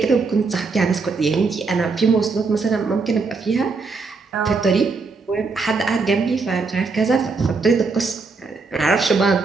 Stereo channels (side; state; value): left; quieter; 4.3 dB